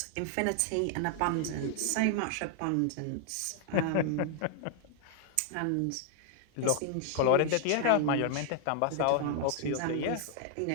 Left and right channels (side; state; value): both; different; correlation 0.00